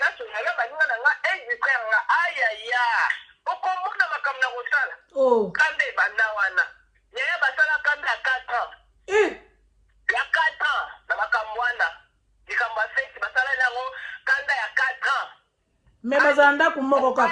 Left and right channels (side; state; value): both; identical; correlation 1.00